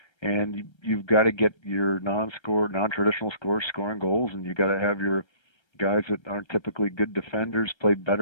and you've got to get your non-traditional scorers scoring goals, and you got to have your guys that aren't typically good defenders play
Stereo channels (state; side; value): late; right; 1.3 ms